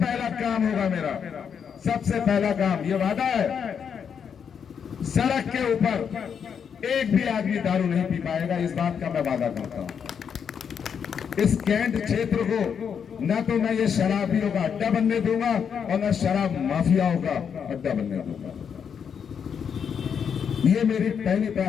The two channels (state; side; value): quieter; right; 7.2 dB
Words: काम होगा मेरा, सबसे पहला काम, ये वादा है, सड़क के ऊपर एक भी आदमी दारू नहीं पी पाएगा, इस बात का मैं वादा करता हूं। इस कैंट क्षेत्र को न तो मैं ये शराबियों का अड्डा बनने दूंगा और न शराब माफियाओं का अड्डा बनने दूंगा। ये मेरी पहली